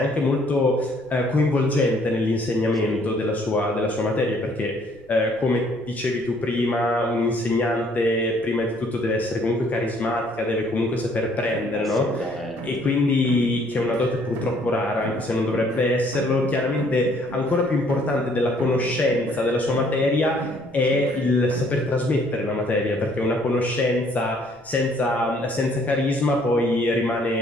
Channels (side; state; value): left; noise; rumble, 30 dB below the sound